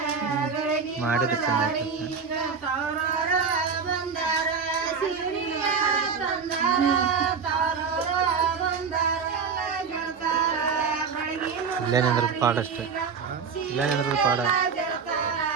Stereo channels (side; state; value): left; quieter; 5.8 dB